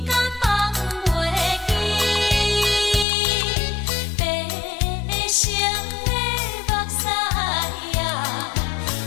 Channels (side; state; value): right; drops out; at 3.1 s